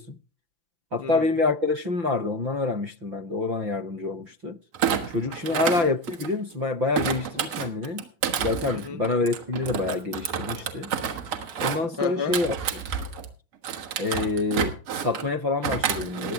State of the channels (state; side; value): late; left; 5.9 ms